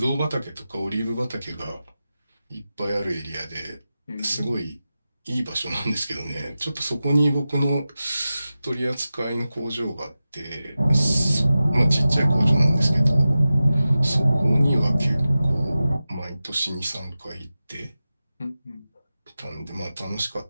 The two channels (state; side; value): inverted; both; correlation -0.94